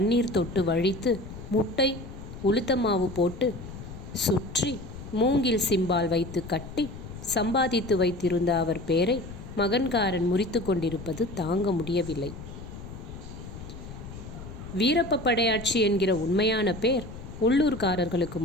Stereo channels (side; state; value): left; noise; rumble, 12 dB below the sound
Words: தொட்டு வழித்து முட்டை உளுத்தமாவு போட்டு சுற்றி மூங்கில் சிம்பால் வைத்து கட்டி சம்பாதித்து வைத்திருந்த அவர் பேரை மகன்காரன் முறித்து கொண்டிருப்பது தாங்க முடியவில்லை. வீரப்ப படையாட்சி என்கிற உண்மையான பேர் உள்ளூர்காரர்களுக்கு